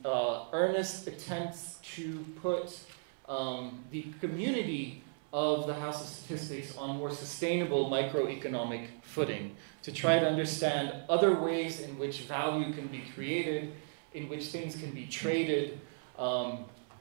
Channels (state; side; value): silent; left; 54 dB below the other